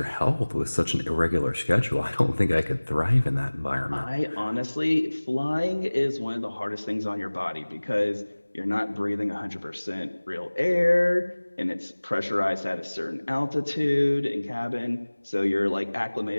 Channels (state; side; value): inverted; both; correlation -1.00